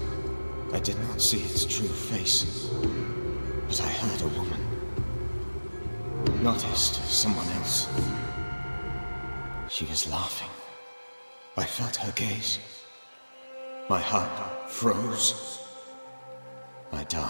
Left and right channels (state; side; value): inverted; both; correlation -1.00